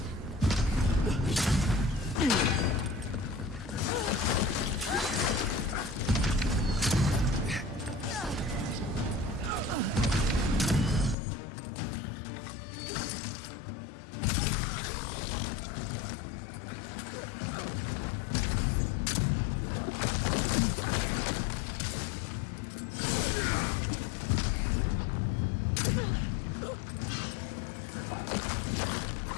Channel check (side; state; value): right; drops out; at 11.2 s